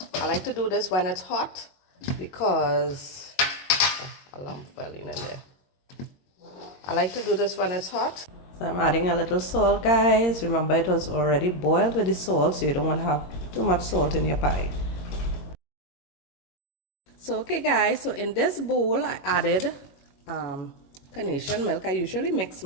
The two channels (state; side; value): late; right; 22 ms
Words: I like to do this when it's hot because a lump fell in there. I like to do this when it's hot. So I'm adding a little salt, guys. Remember, it was already boiled with the salt, so you don't want to have too much salt in your pie. So okay guys, so in this bowl I added carnation milk. I usually mix